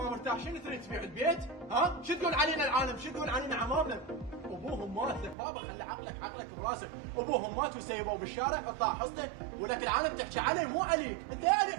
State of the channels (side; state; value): left; drops out; at 5.4 s